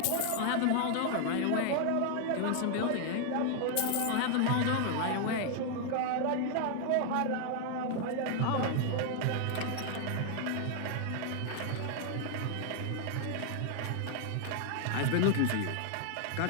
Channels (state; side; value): different; both; correlation 0.00